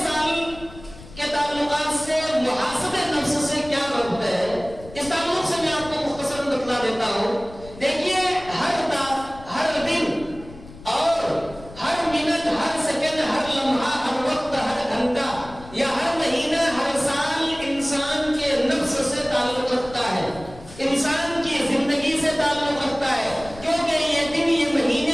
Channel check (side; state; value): left; noise; rumble, 18 dB below the sound